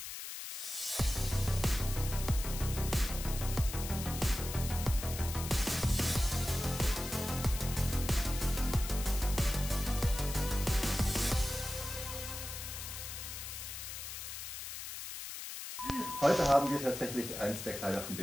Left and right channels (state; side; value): noise; left; hiss, 8 dB below the sound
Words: Heute haben wir tatsächlich eins der Kleider, von